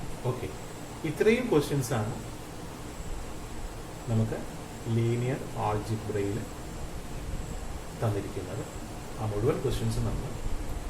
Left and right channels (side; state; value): both; identical; correlation 1.00